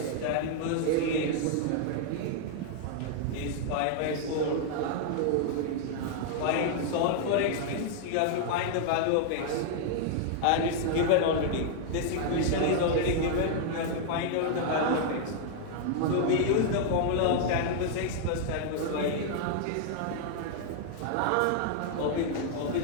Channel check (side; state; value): both; different; correlation 0.00